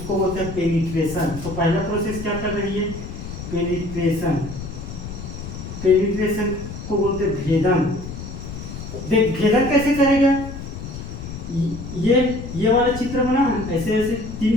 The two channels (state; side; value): noise; left; rumble, 9 dB below the sound